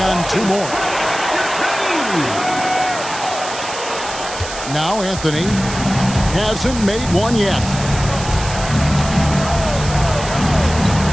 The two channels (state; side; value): noise; right; hiss, 10 dB below the sound